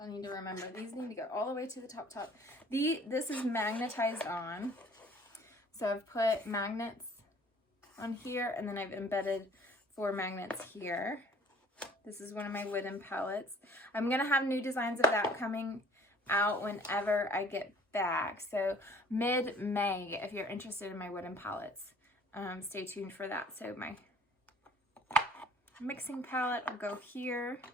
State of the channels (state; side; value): normal; both; correlation 0.53